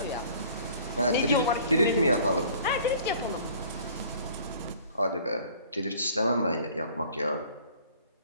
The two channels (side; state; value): both; inverted; correlation -0.52